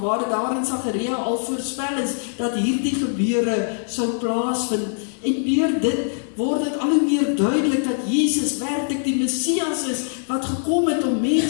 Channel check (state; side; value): silent; right; digital silence